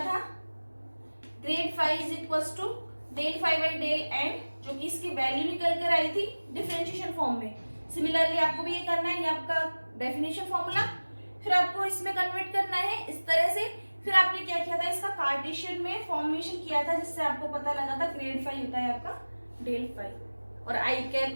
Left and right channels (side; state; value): both; inverted; correlation -1.00